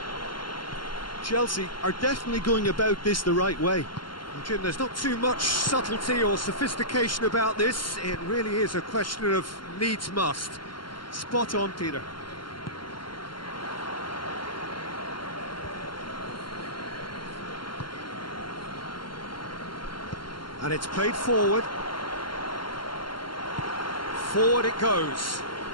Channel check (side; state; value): right; late; 0.72 ms